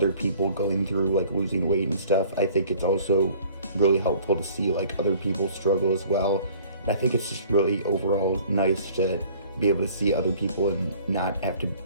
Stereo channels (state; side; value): inverted; both; correlation -0.52